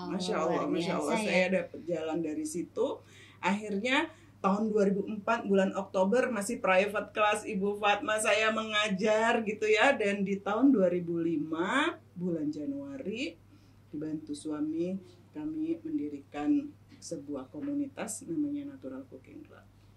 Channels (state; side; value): identical; both; correlation 1.00